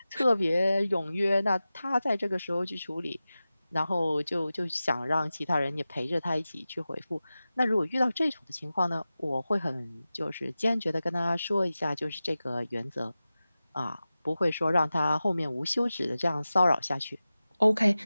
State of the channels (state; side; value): inverted; both; correlation -0.95